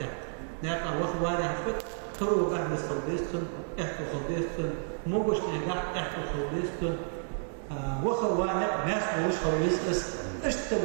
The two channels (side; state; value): left; silent; digital silence